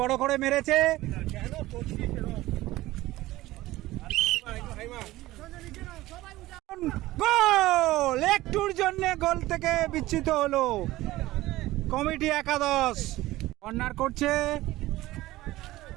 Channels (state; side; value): quieter; left; 17.3 dB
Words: করে মেরেছে। গোল! একটুর জন্য গোল থেকে বিচ্যুত হলো কমিটি একাদশ। কর্নার করছে